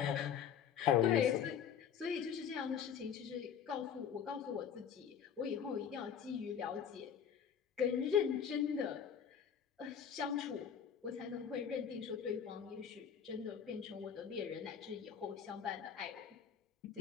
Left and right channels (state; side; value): quieter; right; 8.0 dB